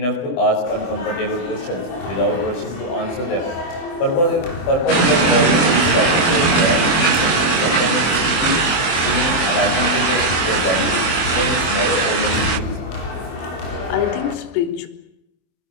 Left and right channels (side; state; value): right; late; 24 ms